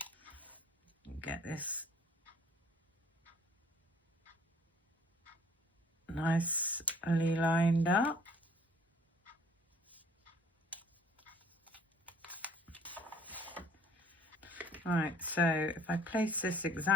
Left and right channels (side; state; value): both; normal; correlation 0.56